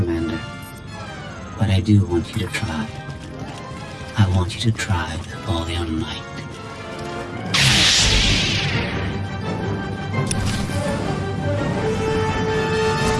But I do want you to try. I want you to try with all your might.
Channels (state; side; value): identical; both; correlation 1.00